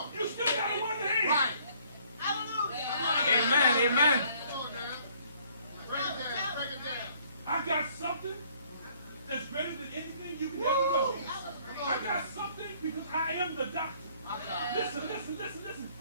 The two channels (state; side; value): inverted; both; correlation -0.60